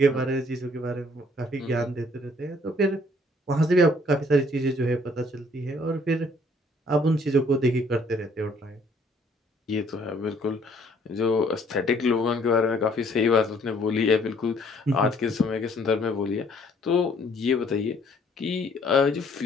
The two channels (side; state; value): both; normal; correlation 0.61